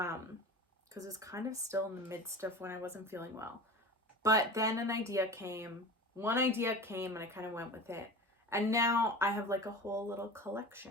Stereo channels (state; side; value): normal; both; correlation 0.33